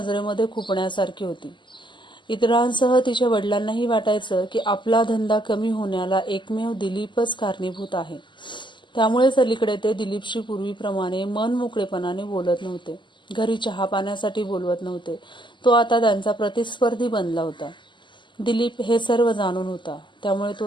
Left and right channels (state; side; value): late; right; 0.23 ms